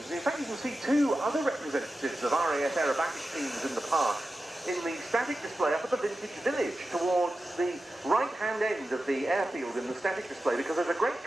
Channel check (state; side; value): normal; both; correlation 0.92